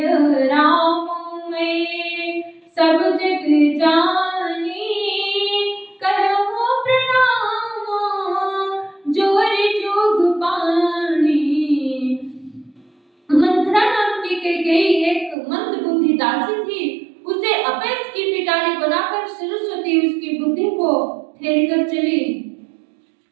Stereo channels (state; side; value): drops out; left; at 15.4 s